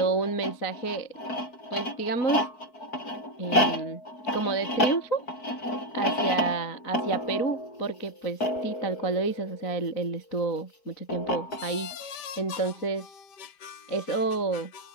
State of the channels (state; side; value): late; right; 4.6 ms